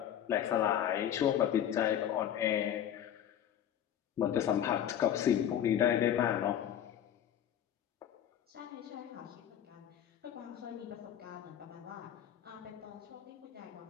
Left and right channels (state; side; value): quieter; right; 10.2 dB